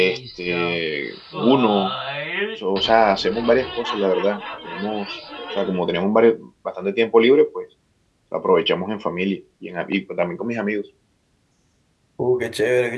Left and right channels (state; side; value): identical; both; correlation 1.00